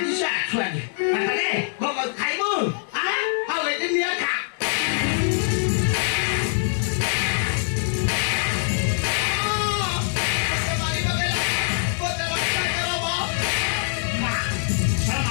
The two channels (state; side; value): silent; right; 56 dB below the other